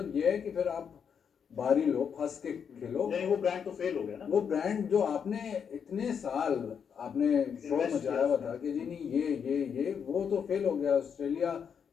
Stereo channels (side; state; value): right; quieter; 7.2 dB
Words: ये है कि फिर आप बारी लो, फंस के खेलो। नहीं, वो ब्रांड तो फेल हो गया ना। वो ब्रांड जो आपने इतने साल आपने शो मचाया हुआ था कि जी नहीं ये वो तो फेल हो गया। ऑस्ट्रेलिया